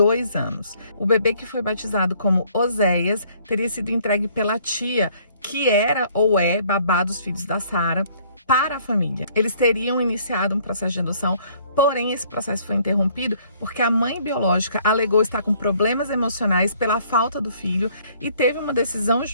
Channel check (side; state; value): both; inverted; correlation -0.61